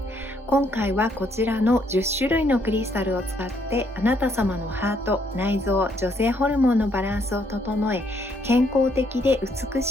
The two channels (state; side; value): normal; both; correlation 0.70